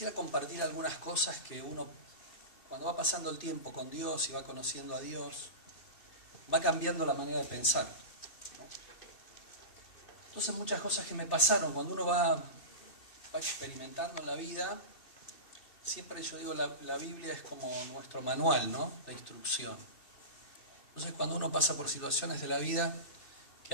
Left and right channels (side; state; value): right; late; 2.6 ms